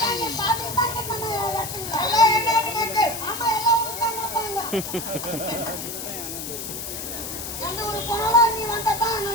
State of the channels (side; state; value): left; noise; hiss, 7 dB below the sound